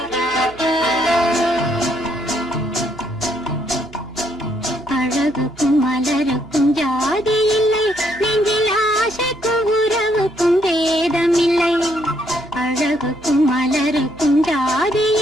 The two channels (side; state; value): right; noise; hum, 22 dB below the sound